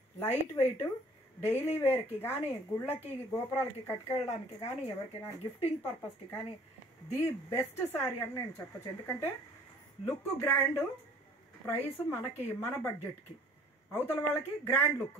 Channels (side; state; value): both; normal; correlation 0.53